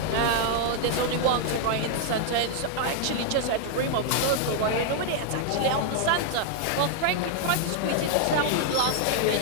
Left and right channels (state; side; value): different; both; correlation 0.00